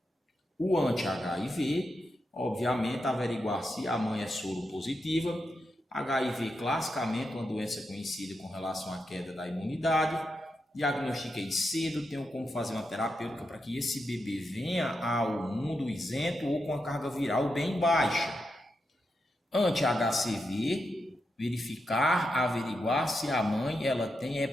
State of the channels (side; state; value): both; normal; correlation 0.86